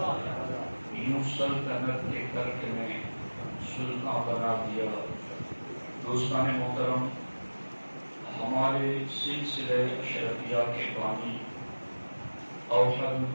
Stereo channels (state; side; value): inverted; both; correlation -1.00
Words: یوں سلطنت کے ترک نے سلطان بنا دیا۔ دوستان محترم، ہمارے سلسلہ اشرفیہ کے بانی اوحد